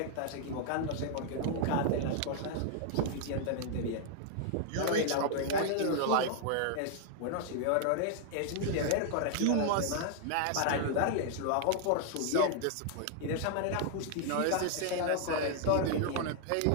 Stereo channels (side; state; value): both; different; correlation 0.00